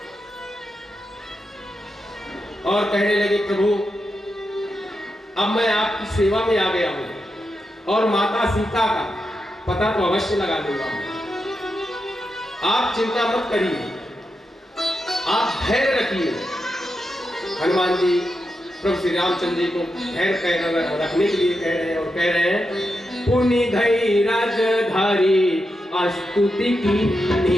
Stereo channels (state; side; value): normal; both; correlation 0.87